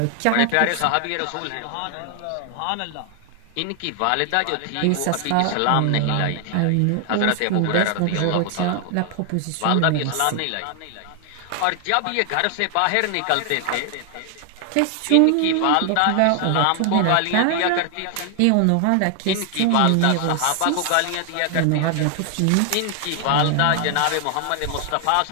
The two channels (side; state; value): both; different; correlation 0.00